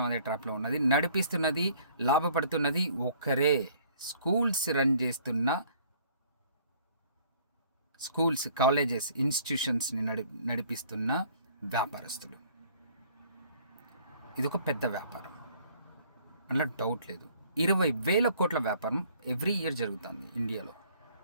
అదే ట్రాప్లో ఉన్నది. నడిపిస్తున్నది, లాభపడుతున్నది ఒక్కరే. స్కూల్స్ రన్ చేస్తున్న స్కూల్స్, కాలేజెస్, ఇన్స్టిట్యూషన్స్ని నడిపిస్తున్న వ్యాపారస్తులు. ఇదొక పెద్ద వ్యాపారం, అందులో డౌట్ లేదు. 20,000 కోట్ల వ్యాపారం ఎవ్రీ ఇయర్ జరుగుతుంది ఇండియాలో.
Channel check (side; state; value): both; inverted; correlation -0.58